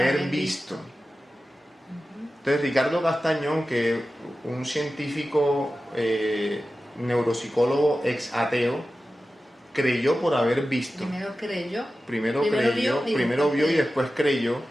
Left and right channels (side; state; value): both; normal; correlation 0.94